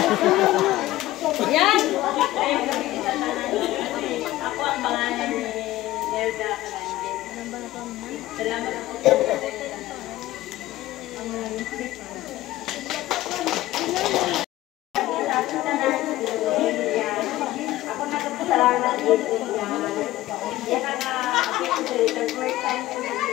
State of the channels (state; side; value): quieter; right; 16.2 dB